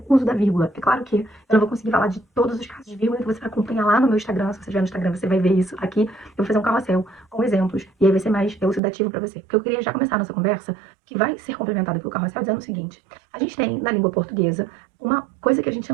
o uso da vírgula. É claro que eu não vou conseguir falar de todos os casos de vírgula, então você vai acompanhar lá no meu Instagram. Se você estiver no Instagram, você vai ver isso aqui. Eu vou fazer um carrossel com exemplos, e aí vai ser mais elucidativo pra você. Porque eu queria já começar a nossa conversa, que vai ser complementada pelo carrossel, dizendo o seguinte. A gente tem, na língua portuguesa, uma coisa que a gente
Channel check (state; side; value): drops out; left; at 8.8 s